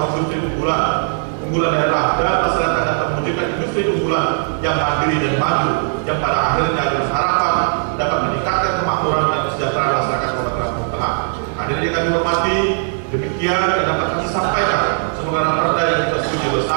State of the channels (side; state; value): left; silent; 67 dB below the other